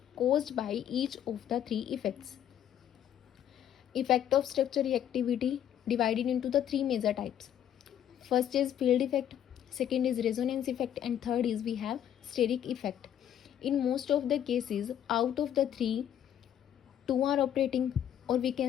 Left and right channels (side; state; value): right; quieter; 10.2 dB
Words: caused by each of the three effects. Effect of structure reactivity divided into the three major types. First is field effect, second is resonance effect, and third is we have steric effect. In most of the cases, out of the three, two are operating, or we